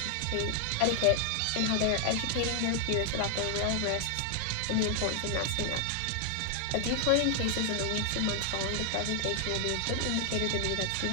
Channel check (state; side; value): different; both; correlation 0.00